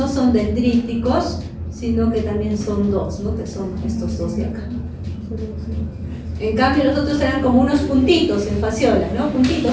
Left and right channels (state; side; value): identical; both; correlation 1.00